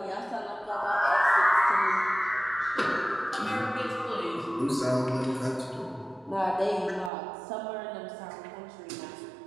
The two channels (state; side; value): drops out; left; at 7.1 s